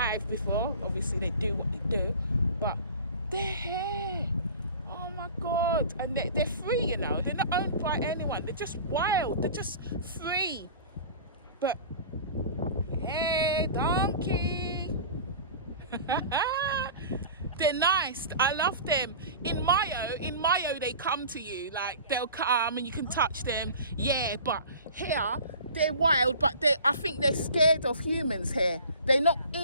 before. Obviously they do what they do, but they're here. Oh my God. And they're free, you know. They're not owned by anyone. They're just wild. They're just free. But hey, donkey. They're nice. I love them. In Mayo, they come to you. Like, they'll come and you can touch them. Yeah, but here, they're wild, but I think they're scared of humans here. They're not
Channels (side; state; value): both; inverted; correlation -0.40